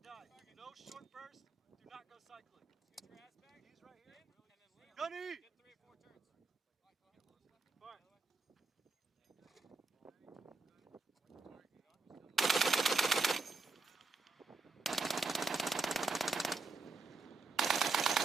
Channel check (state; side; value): quieter; left; 3.9 dB